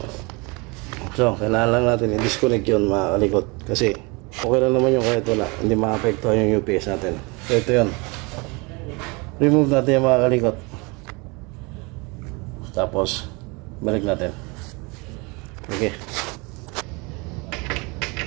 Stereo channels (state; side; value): quieter; left; 28.0 dB